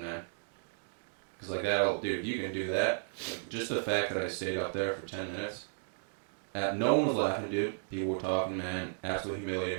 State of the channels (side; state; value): left; silent; digital silence